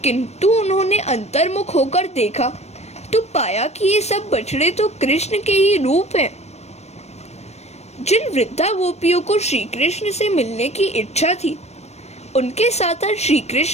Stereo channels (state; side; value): late; right; 0.31 ms